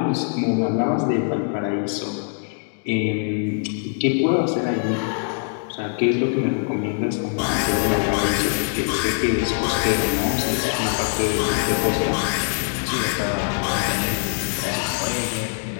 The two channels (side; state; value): right; silent; 58 dB below the other